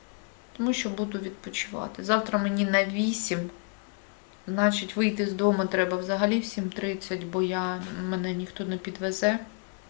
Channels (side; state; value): right; quieter; 37.3 dB